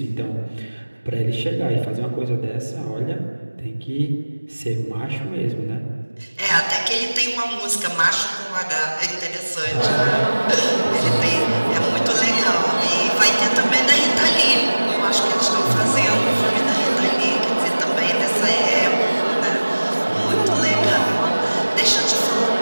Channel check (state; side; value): inverted; both; correlation -1.00